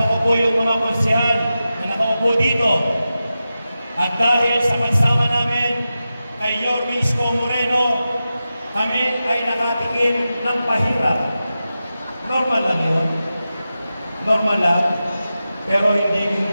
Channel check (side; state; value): both; inverted; correlation -0.92